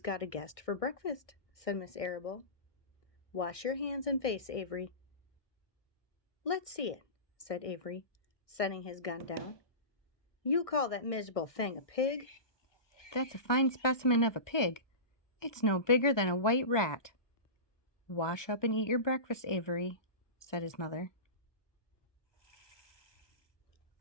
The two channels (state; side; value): late; right; 1.2 ms